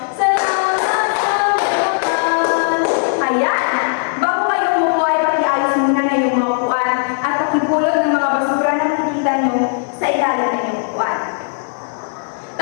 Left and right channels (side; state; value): right; silent; 68 dB below the other